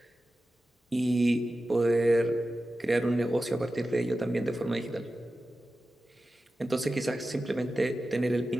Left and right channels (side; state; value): both; normal; correlation 0.93